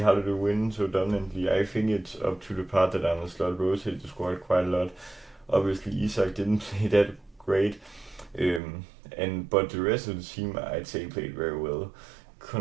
how did we win so dominantly? I think it's up to the part that Arne Slot rotated the squad quite a lot. Obviously, Isak didn't play that great. But the rest of the team, I'd say, played very well.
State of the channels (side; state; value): left; drops out; at 8.6 s